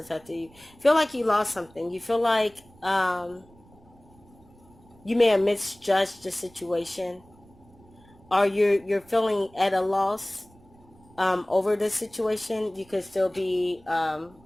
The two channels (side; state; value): right; noise; rumble, 27 dB below the sound